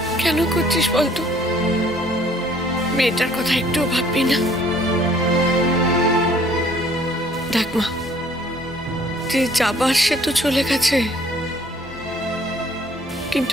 কেন করছিস বলতো? মেয়েটার কথা একটুও ভাববি না? দেখ মা, যে যাবার সে তো চলে গেছে,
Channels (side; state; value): both; normal; correlation 0.58